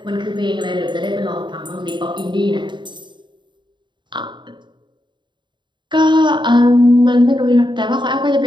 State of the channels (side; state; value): left; late; 0.23 ms